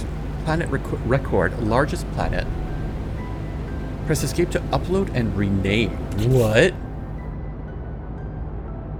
record, largest planet. Press escape to upload and rename. What?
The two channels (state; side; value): identical; both; correlation 1.00